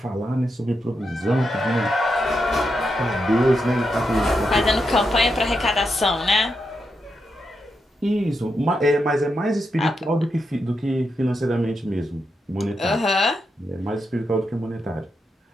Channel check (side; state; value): both; normal; correlation 0.84